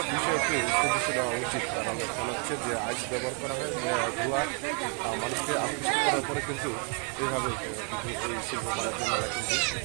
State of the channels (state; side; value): quieter; left; 37.7 dB